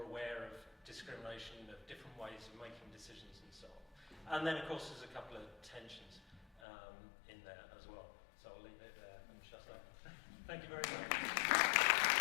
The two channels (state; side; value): drops out; right; at 6.6 s